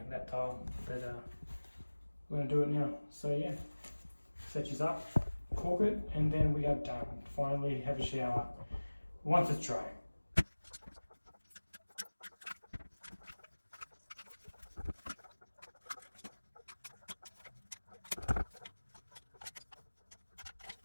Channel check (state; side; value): inverted; both; correlation -1.00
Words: that tile. But we're gonna do it now. So yeah, set yours up, caulk it, and then we are done. Finally, have a shower once it's dry.